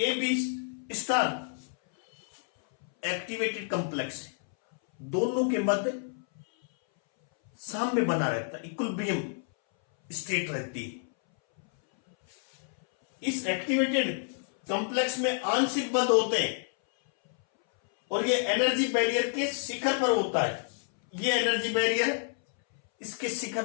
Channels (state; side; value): silent; right; 58 dB below the other